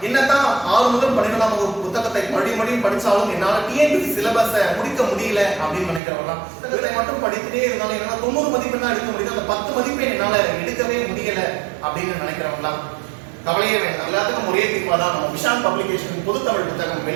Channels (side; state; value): left; drops out; at 6.0 s